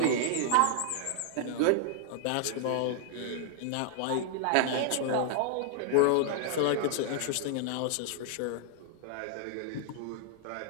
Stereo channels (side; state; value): both; different; correlation 0.00